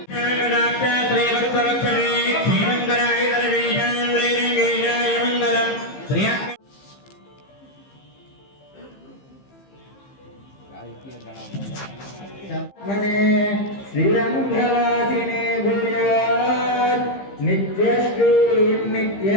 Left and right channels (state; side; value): late; right; 15 ms